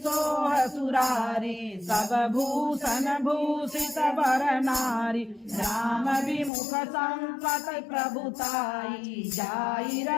सोह सुरारी सब भूषण भूषित वर नारी राम विमुख संपत प्रभुताई जाई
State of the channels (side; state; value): right; drops out; at 6.5 s